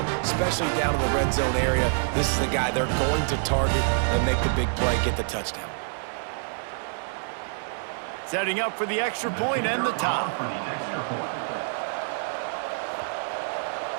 especially down in the red zone area. This is the guy they're going to target and make the big play, get the touchdown. Setting up for the extra point and the top.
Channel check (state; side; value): silent; left; 60 dB below the other